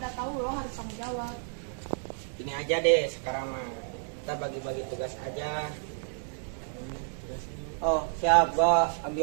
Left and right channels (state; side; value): silent; left; 58 dB below the other